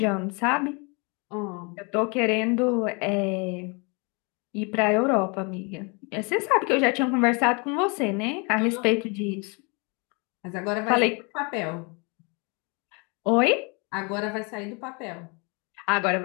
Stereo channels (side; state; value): right; quieter; 31.7 dB